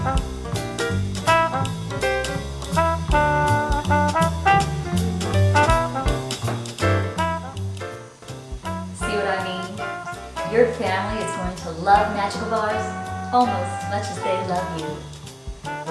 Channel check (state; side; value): identical; both; correlation 1.00